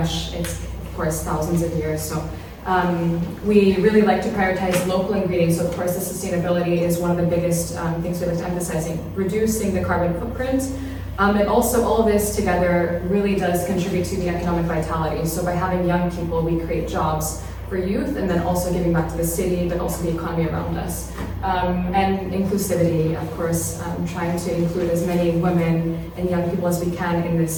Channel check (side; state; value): both; identical; correlation 1.00